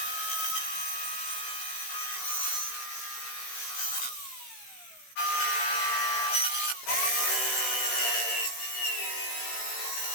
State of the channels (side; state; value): right; late; 15 ms